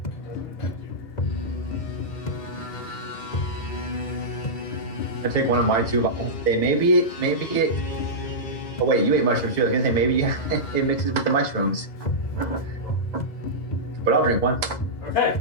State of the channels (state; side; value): late; right; 2.0 ms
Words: I take one of my 2 vials. Say maybe it. Oh wait, you ate mushrooms too. I was gonna say maybe it mixes with the mushrooms. But I'll drink one. Okay.